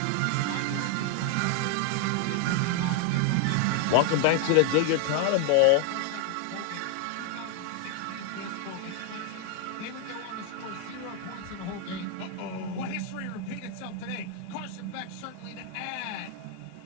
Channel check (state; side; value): different; both; correlation 0.00